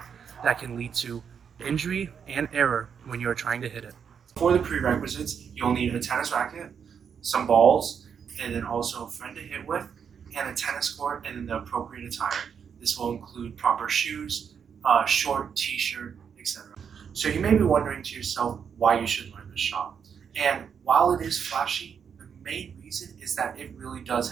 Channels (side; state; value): left; quieter; 7.2 dB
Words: that can lead to injury and error when you are trying to hit it. For the prerequisites, you'll need a tennis racket, some balls, and then also a friend to hit with, and a tennis court, and then the appropriate attire. This will include proper shoes, short t-shirt, etc. So you may be wondering to yourself why you should learn this shot. And while it is flashy, the main reason is that it really does